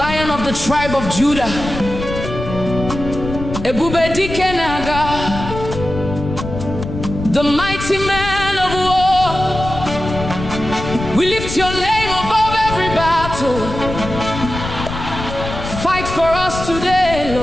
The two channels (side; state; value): left; noise; rumble, 8 dB below the sound